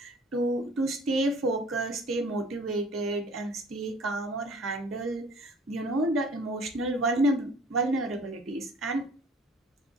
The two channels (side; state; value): both; normal; correlation 0.50